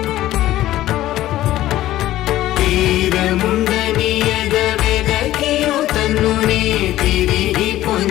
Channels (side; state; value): right; quieter; 14.6 dB